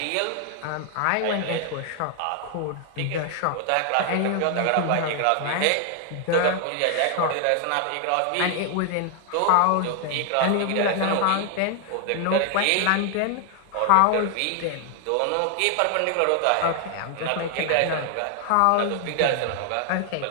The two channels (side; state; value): both; different; correlation 0.00